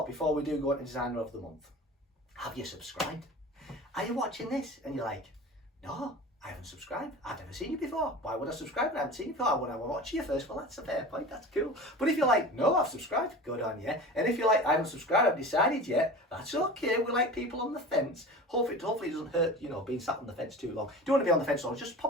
before we do go into Designer of the Month. Have you subscribed? Are you watching this and you're like, no, I haven't subscribed. I've never seen you before. Why would I subscribe? I haven't seen you before. I want to watch you first. Well, that's a fair point. That's cool. But if you're like, no, I've subscribed, good on you. And if you're like, I haven't subscribed, I've decided yet, that's okay. We like people on the fence. Hopefully it doesn't hurt, being sat on the fence too long. Don't want to be on the fence long. Just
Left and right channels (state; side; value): normal; both; correlation 0.35